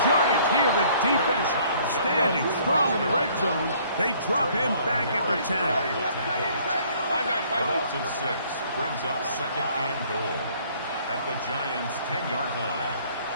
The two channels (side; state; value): both; inverted; correlation -0.59